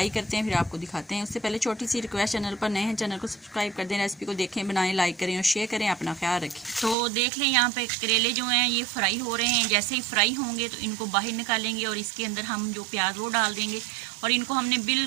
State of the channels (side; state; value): left; drops out; at 7.0 s